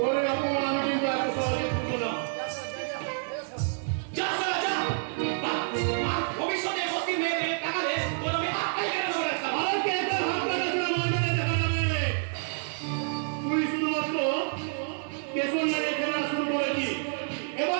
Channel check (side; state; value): left; silent; 59 dB below the other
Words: অপমান আমি কিন্তু এত সহজে করবো না। যা সালা যা। আর ভবিষ্যতে বস্তির মেয়েদের টাকা দে, তোর আমি হাতটাই কেটে দেবো রাস্তা। আর কে তোর হাত লাগাচ্ছে না মারবে না দেখা যাবে। তুই শুধুমাত্র কেশর লাগে খেলা শুরু করেছি,